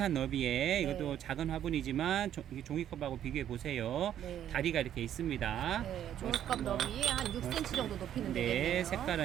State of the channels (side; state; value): left; quieter; 10.6 dB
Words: 너비에 네. 이것도 작은 화분이지만 종이컵하고 비교해 보세요. 네. 다리가 이렇게 있습니다. 네. 종이컵 너비에 한 6cm 정도 높이는 네, 되겠네요.